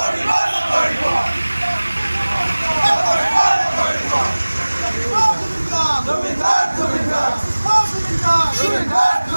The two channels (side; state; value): both; inverted; correlation -1.00